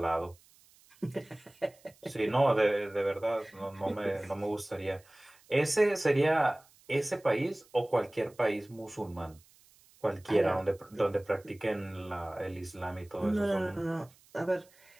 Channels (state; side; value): noise; right; hiss, 29 dB below the sound